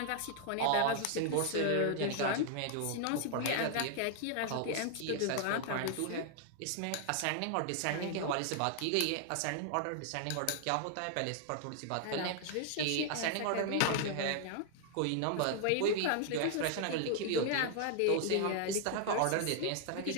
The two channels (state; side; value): different; both; correlation 0.00